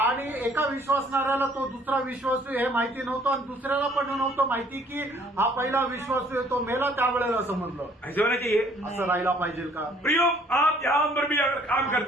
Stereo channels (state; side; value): normal; both; correlation 0.60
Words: एका विश्वासणाऱ्याला तो दुसरा विश्वासू हे माहिती नव्हतं, आणि दुसऱ्याला पण नव्हतं माहिती की हा पहिला विश्वासू आहे तो मेला. त्यावेळेला समजलं. ऐसे होना चाहिए. असं राहायला पाहिजे का? प्रियो, आप जहां पर भी अगर काम